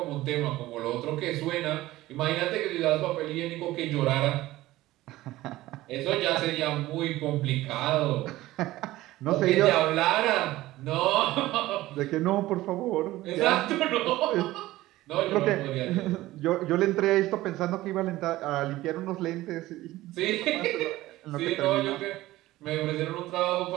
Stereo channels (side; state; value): left; quieter; 16.8 dB